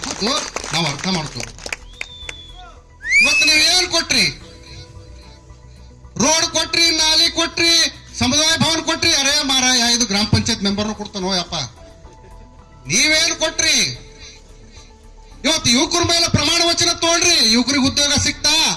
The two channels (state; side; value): identical; both; correlation 1.00